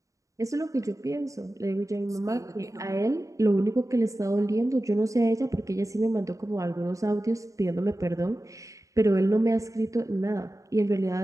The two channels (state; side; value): late; left; 0.16 ms